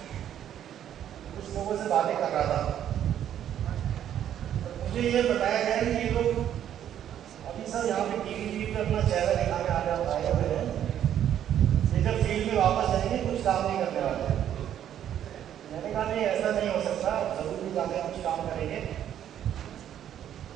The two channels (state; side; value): quieter; left; 10.4 dB